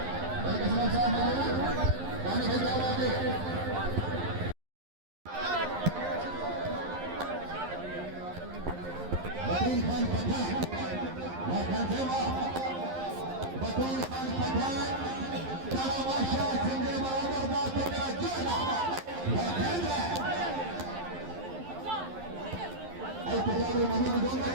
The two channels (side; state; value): left; late; 11 ms